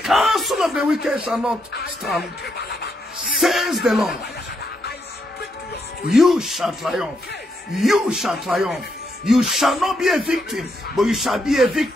counsel of the wicked shall not stand. Says the Lord. You shall triumph. You shall triumph. You shall not be a victim, but you shall be a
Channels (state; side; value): normal; both; correlation 0.79